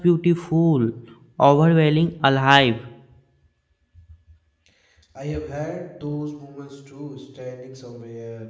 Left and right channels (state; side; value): identical; both; correlation 1.00